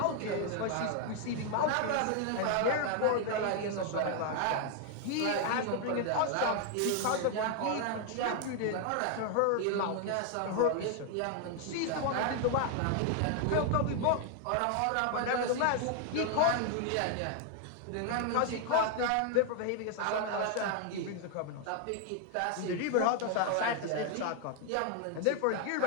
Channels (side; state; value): both; different; correlation 0.00